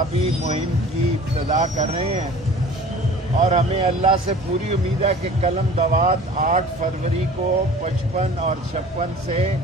مہم کی ابتدا کر رہے ہیں، اور ہمیں اللہ سے پوری امید ہے کہ قلم دوات 8 فروری کو 55 اور 56 سے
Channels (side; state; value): both; normal; correlation 0.44